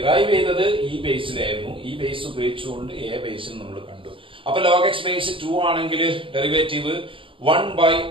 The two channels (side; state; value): left; late; 0.25 ms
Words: ചെയ്തത് ഈ ബേസിലായിരുന്നു. ഈ ബേസ് ഉപയോഗിച്ചുകൊണ്ട് എ ബേസിൽ നമ്മൾ കണ്ടു. അപ്പൊ ലോഗ് എക്സ് ബേസ് 2 ആണെങ്കിൽ derivative